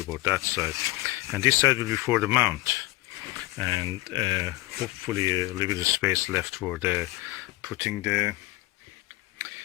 or that side, and this side will be for the mount, and hopefully a little bit of space left for the putting the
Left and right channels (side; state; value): right; quieter; 19.5 dB